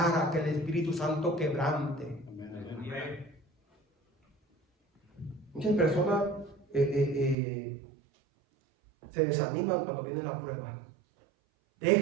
a que el Espíritu Santo quebrante. Muchas personas se desaniman cuando viene la prueba.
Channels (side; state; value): left; drops out; at 7.4 s